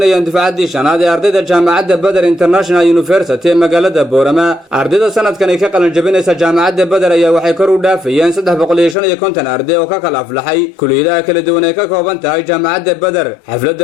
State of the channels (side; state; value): right; drops out; at 9.0 s